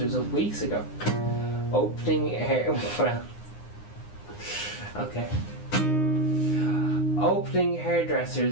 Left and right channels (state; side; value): late; right; 9.7 ms